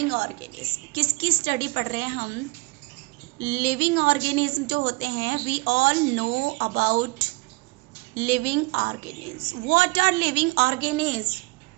organism. किसकी स्टडी पढ़ रहे हैं हम? लिविंग ऑर्गेनिज्म जो होते हैं. We all know about living organism. What are living organism?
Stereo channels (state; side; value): quieter; left; 25.4 dB